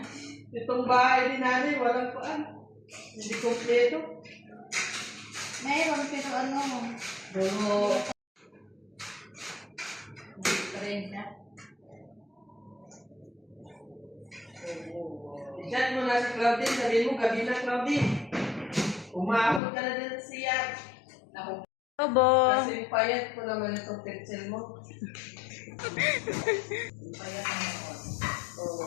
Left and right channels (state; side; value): drops out; right; at 19.6 s